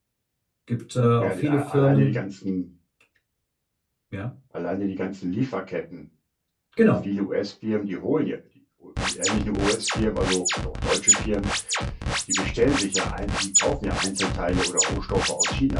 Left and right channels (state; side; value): identical; both; correlation 1.00